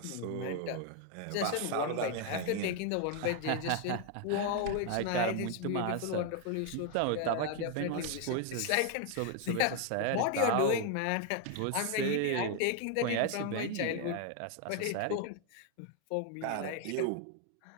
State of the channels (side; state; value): both; different; correlation 0.00